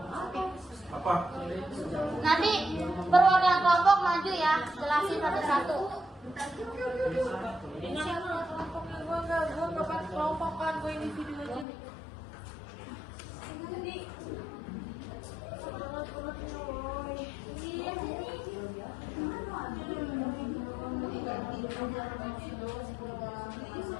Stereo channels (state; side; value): drops out; right; at 11.7 s